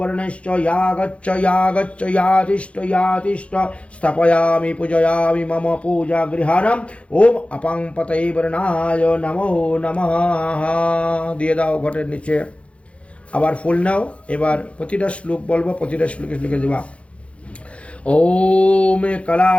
यागच्च यागच्च यातिष्ठ यातिष्ठ स्थपयामि पूजयामि मम पूजा गृहानम् ओम अपांपतये वर्णाय नमो नमः। দিয়ে দাও ঘটের নিচে। আবার ফুল নাও। এবার প্রতিটা শ্লোক বলবো, প্রতিটা শ্লোকে লিখে দেবা। ओम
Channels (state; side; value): late; right; 0.062 ms